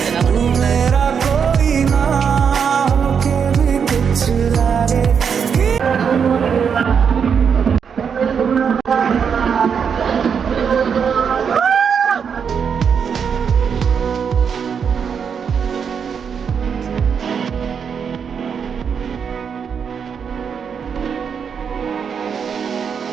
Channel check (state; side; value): quieter; left; 6.8 dB